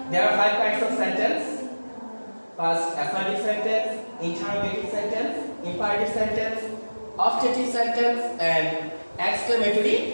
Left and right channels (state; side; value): inverted; both; correlation -1.00